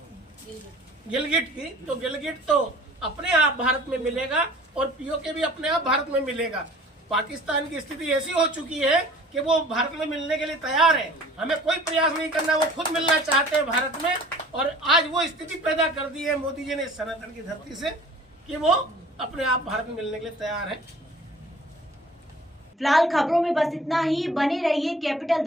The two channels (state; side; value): normal; both; correlation 0.49